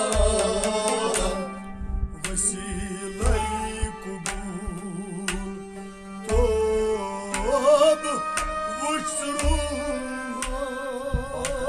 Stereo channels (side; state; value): both; identical; correlation 1.00